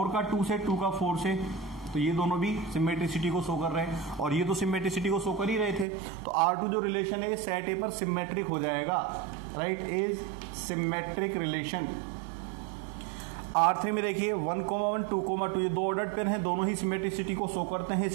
का 2 से, 2 का 4 से, तो ये दोनों भी सिमेट्रिसिटी को शो कर रहे हैं, और ये तो सिमेट्रिसिटी को शो कर ही रहे थे, तो R2 जो रिलेशन है ये सेट ए पर सिमेट्रिक हो जाएगा, right, is symmetric relation. R3 में देखिए 1,1, 2,2 ये दो ऑर्डर्ड पेयर हैं, दोनों ही सिमेट्रिसिटी को शो करते हैं,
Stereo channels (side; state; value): left; drops out; at 5.9 s